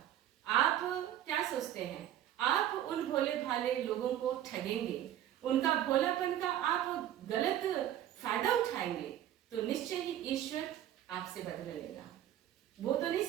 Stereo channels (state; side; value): quieter; left; 11.8 dB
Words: आप क्या सोचते हैं, आप उन भोले भाले लोगों को ठगेंगे, उनका भोलापन का आप गलत फायदा उठाएंगे, तो निश्चय ही ईश्वर आपसे बदला लेगा। वो तो नहीं